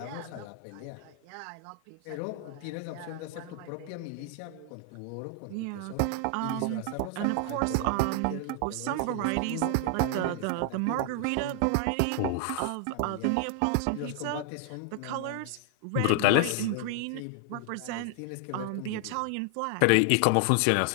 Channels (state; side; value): different; both; correlation 0.00